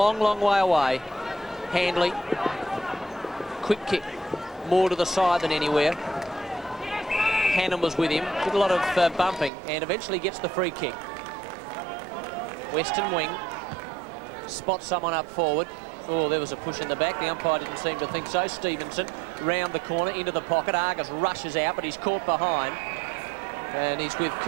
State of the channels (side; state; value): left; drops out; at 9.5 s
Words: long way away. Handley, quick kick, more to the side than anywhere. Hannam was with him, did a lot of bumping, and eventually gets the free kick. Western wing, spots someone up forward. Oh, there was a push in the back. The umpire didn't seem to think so. Stevenson round the corner into the pocket. Argus rushes out, but he's caught behind. And he's with